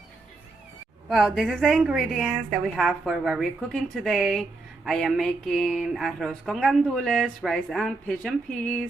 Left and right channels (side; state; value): left; quieter; 3.4 dB